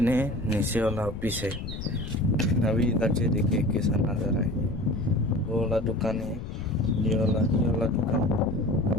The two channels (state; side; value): noise; left; rumble, 8 dB below the sound